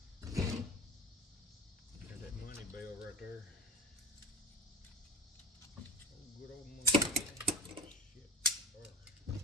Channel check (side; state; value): both; normal; correlation 0.32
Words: There's that money bell right there. Good old money. Oh, shit.